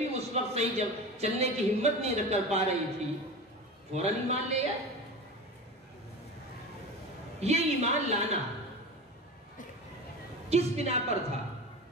اس وقت صحیح جب چلنے کی ہمت نہیں کر پا رہی تھی، فوراً ایمان لے آئے۔ یہ ایمان لانا کس بنا پر تھا؟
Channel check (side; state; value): both; normal; correlation 0.30